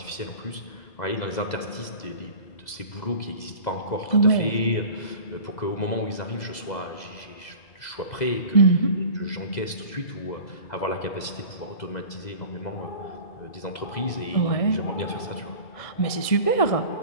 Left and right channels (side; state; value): right; late; 2.0 ms